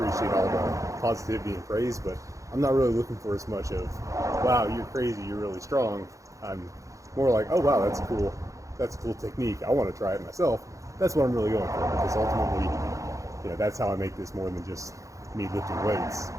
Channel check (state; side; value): late; left; 0.15 ms